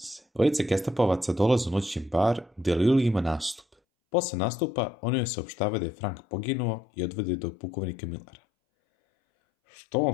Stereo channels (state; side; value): drops out; right; at 3.7 s